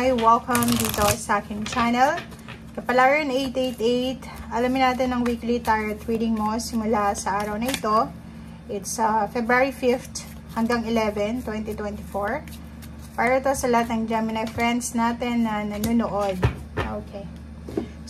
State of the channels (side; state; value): both; identical; correlation 1.00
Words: Welcome dito sa aking channel. Kapalaran 888, alamin natin ang weekly tarot reading mo simula sa araw na ito. It's February 5th hanggang 11, 2024. Para to sa lahat ng Gemini friends natin na nanonood. Okay.